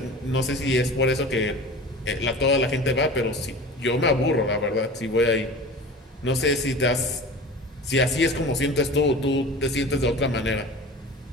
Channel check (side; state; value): both; normal; correlation 0.37